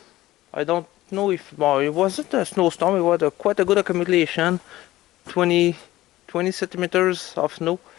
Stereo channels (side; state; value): right; quieter; 16.4 dB